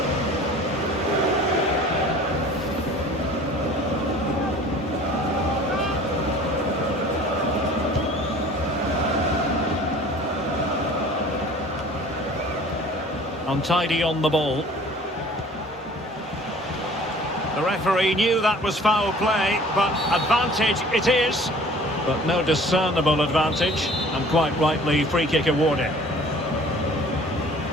Untidy on the ball. The referee knew that was foul play, but advantage it is. But no discernible advantage, and quite rightly free kick awarded.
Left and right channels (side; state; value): both; normal; correlation 0.48